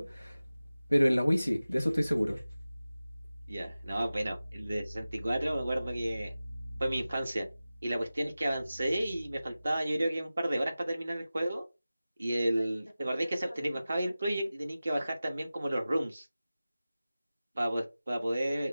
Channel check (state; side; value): inverted; both; correlation -0.96